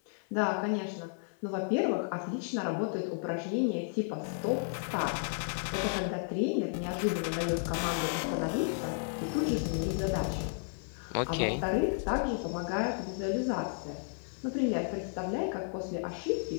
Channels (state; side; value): silent; right; digital silence